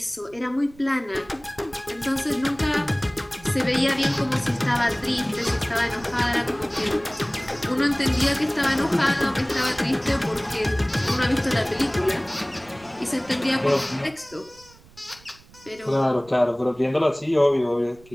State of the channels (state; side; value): noise; right; rumble, 25 dB below the sound